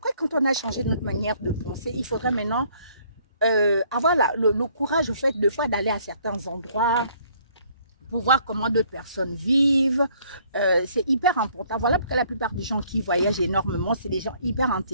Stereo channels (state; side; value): inverted; both; correlation -0.62